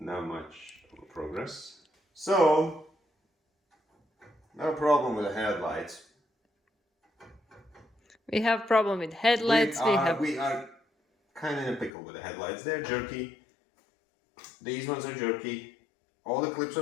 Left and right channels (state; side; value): drops out; right; at 11.9 s